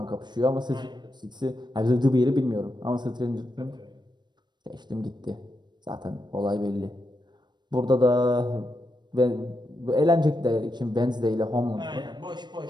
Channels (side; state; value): left; late; 0.21 ms